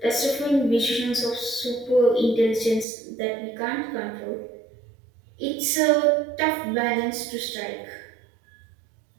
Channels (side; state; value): left; drops out; at 2.9 s